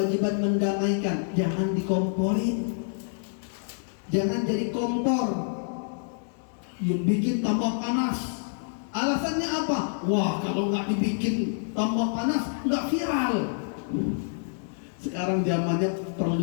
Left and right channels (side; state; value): right; silent; digital silence